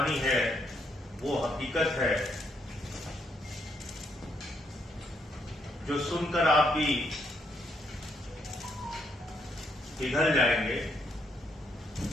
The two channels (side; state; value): both; normal; correlation 0.74